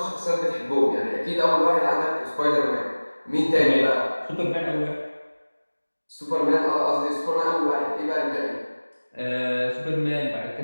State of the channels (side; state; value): both; inverted; correlation -1.00